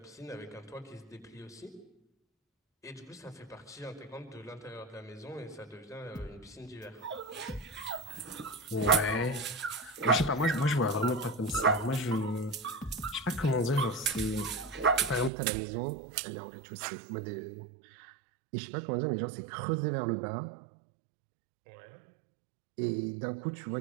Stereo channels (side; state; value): left; drops out; at 15.3 s